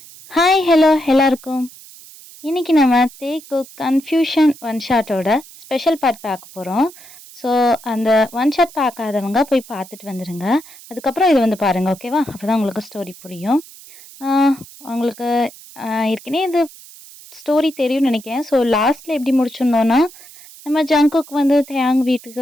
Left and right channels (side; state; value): right; noise; hiss, 20 dB below the sound